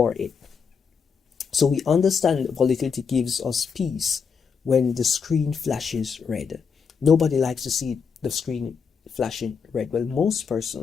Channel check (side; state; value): right; quieter; 6.0 dB